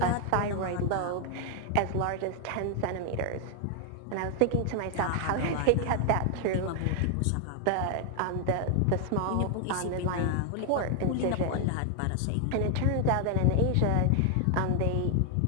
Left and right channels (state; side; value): different; both; correlation 0.00